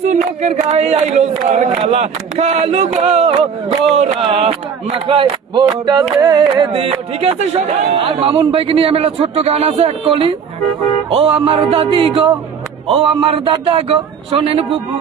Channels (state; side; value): quieter; left; 6.7 dB